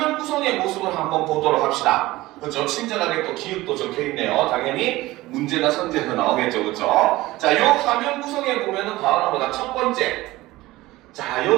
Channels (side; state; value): left; quieter; 18.4 dB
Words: 구성의 모습을 한번 보도록 합시다. 그렇죠? 친절하게 또 기획도 적혀 있네요. 당연히 문제나 선제도 나오겠죠. 그렇죠? 자, 이 화면 구성에 보면은 바로 뭐다? 첫 번째. 자,